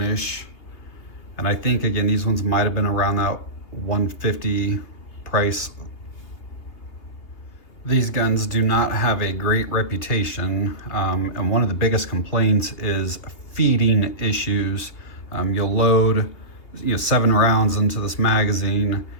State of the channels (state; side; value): late; right; 3.0 ms